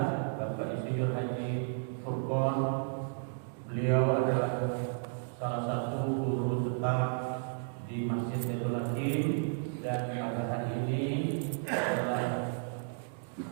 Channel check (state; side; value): silent; left; digital silence